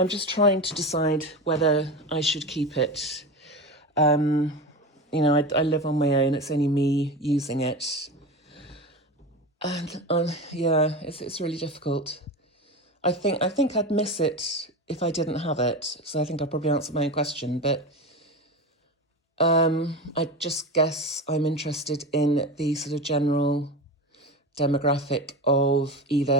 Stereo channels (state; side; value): normal; both; correlation 0.25